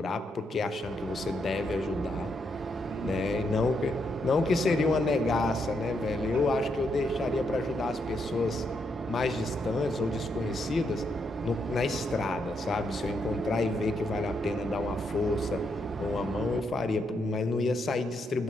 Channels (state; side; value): normal; both; correlation 0.79